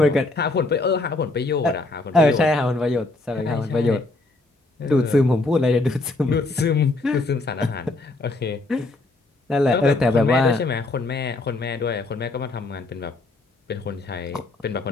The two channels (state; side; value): quieter; right; 3.0 dB